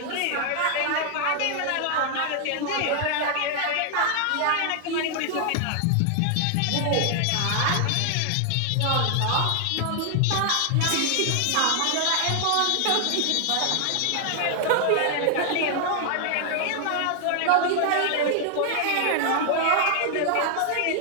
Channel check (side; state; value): both; different; correlation 0.00